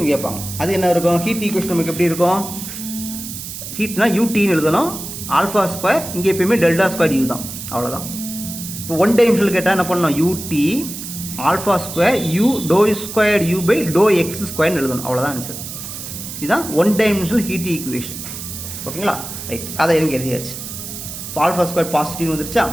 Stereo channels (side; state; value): right; noise; hiss, 9 dB below the sound